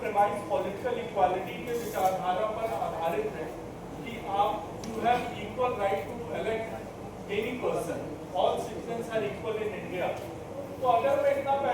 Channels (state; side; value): identical; both; correlation 1.00